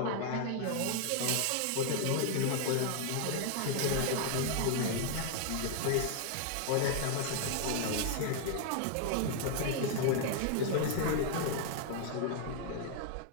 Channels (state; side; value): different; both; correlation 0.00